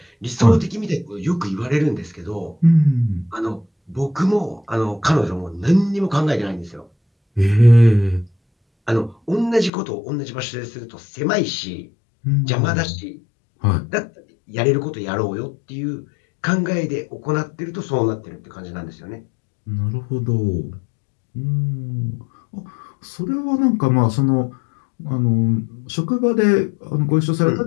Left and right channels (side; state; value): right; drops out; at 9.7 s